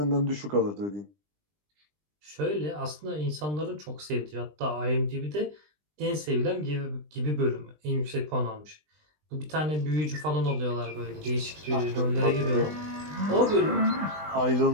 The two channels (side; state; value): left; late; 20 ms